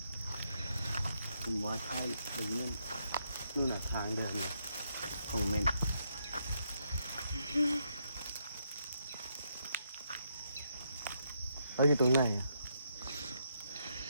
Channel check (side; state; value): both; inverted; correlation -0.77